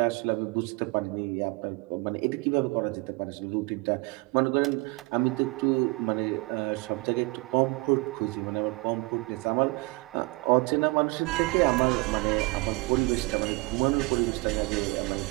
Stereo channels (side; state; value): left; quieter; 26.0 dB